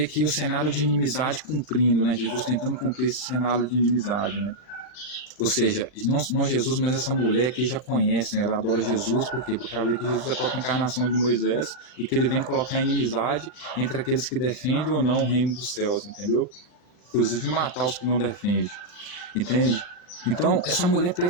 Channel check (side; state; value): right; late; 38 ms